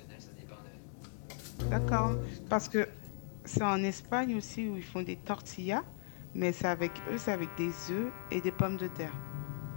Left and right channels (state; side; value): silent; right; digital silence